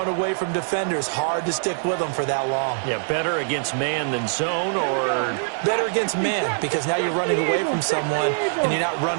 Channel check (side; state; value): left; silent; digital silence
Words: away from defenders, hard to stick with them for that long. Yeah, better against man than zone, or? Better against man, because now you're running away from someone and you're not